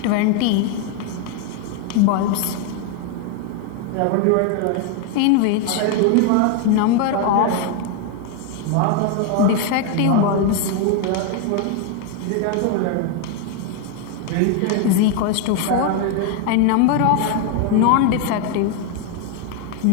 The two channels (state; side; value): different; both; correlation 0.01